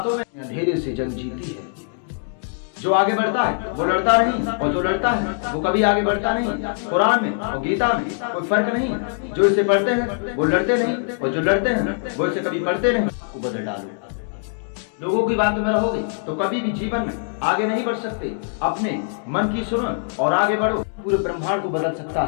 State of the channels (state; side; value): silent; right; digital silence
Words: में। अंधेरे से जंग जीती है। जो आगे बढ़ता है वो लड़ता नहीं, और जो लड़ता है वो कभी आगे बढ़ता नहीं। कुरान में और गीता में कोई फर्क नहीं है। जो इसे पढ़ते हैं वो लड़ते नहीं, और जो लड़ते हैं वो इसे कभी पढ़ते नहीं। को बदल डालो। लोगों की बातों में रहोगे तो कभी भी जीवन में आगे नहीं बढ़ सकते। अपने मन की सुनो और आगे बढ़ो। पूरे ब्रह्मांड को बदल सकता